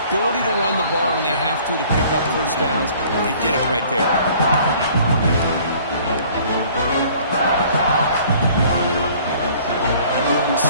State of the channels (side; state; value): both; inverted; correlation -0.54